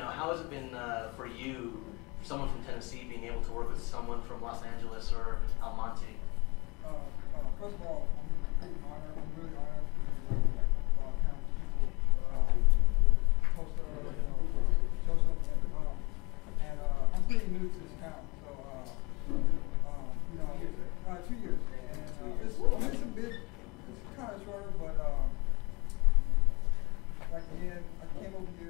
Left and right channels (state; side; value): quieter; right; 26.3 dB